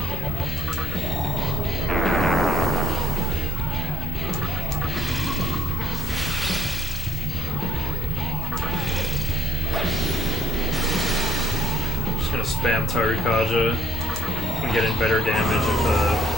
Just gonna spam Tarukaja and get in better damage if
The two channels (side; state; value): both; normal; correlation 0.58